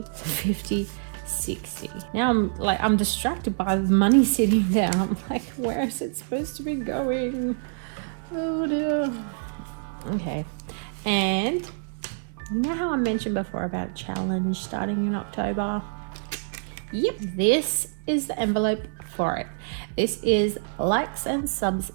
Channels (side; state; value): left; silent; 61 dB below the other